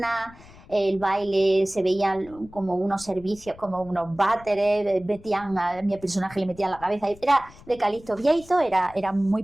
El baile se veían como unos servicios, como unos váteres, a mi personaje le metían la cabeza. Era de Calixto Vieito, era muy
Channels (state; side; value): noise; left; rumble, 22 dB below the sound